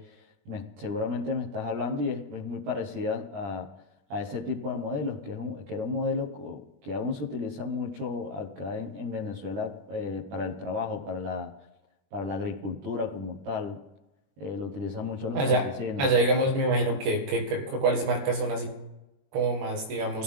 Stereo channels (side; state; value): left; late; 21 ms